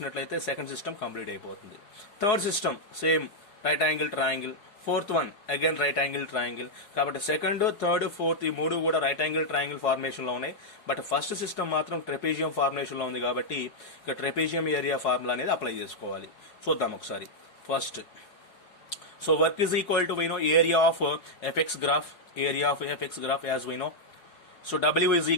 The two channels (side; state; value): right; late; 4.7 ms